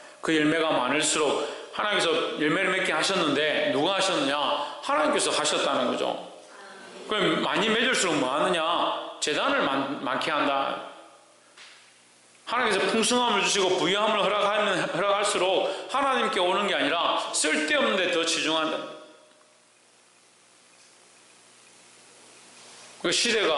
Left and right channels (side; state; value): both; identical; correlation 1.00